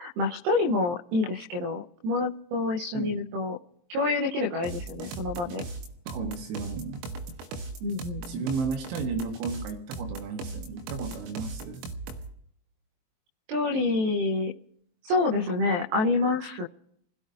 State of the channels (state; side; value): late; left; 23 ms